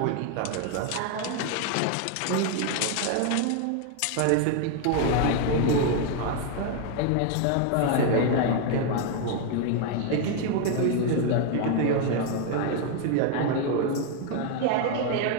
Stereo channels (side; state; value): both; different; correlation 0.01